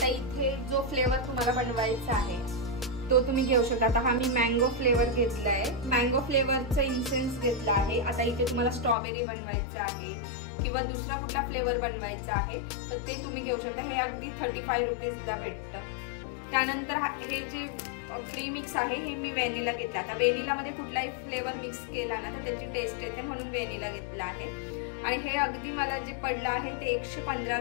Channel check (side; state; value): right; drops out; at 9.0 s